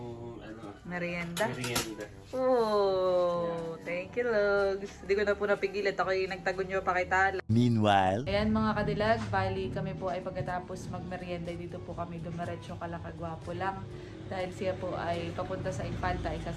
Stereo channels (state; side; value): identical; both; correlation 1.00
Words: Merienda. merienda. Oh, thank you, Lugs. Hindi ko na po napigilit. Ako yung nagtagon nyo pa kay Tala. Meanwhile, Ayan mga kadilag, bali kami po ay pagkatapos magmerienda dito po kami dumiretso kala Kagwapo lang. Dahil siya po ay papunta sa Infanta, ay